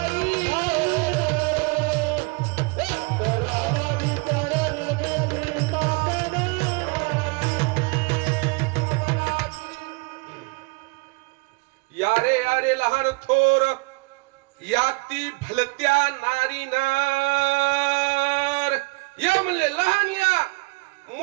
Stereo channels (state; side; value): quieter; left; 28.7 dB